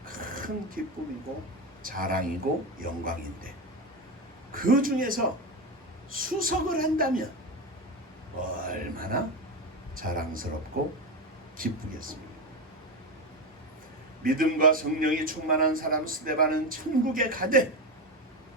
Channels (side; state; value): both; normal; correlation 0.16